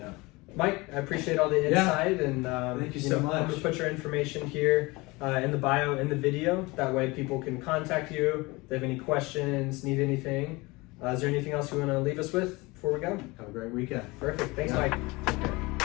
Yeah. Mike, I appreciate all the insight, and Thank you so much. I'm gonna put your information here in the bio in the video. That way, people can contact you if they have any questions, need anything. Is there anything else you want to leave us with before we go? Have a great weekend. Perfect. Thanks, Yeah. Mike. Take care.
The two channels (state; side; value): quieter; right; 23.5 dB